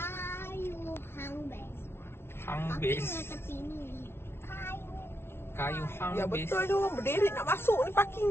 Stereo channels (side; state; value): right; late; 0.12 ms